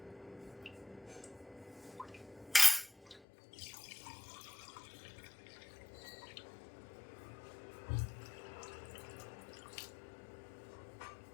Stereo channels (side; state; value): right; drops out; at 3.2 s